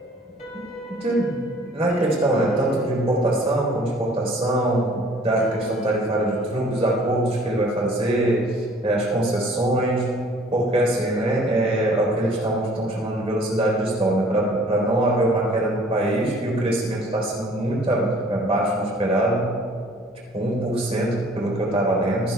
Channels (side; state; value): both; normal; correlation 0.54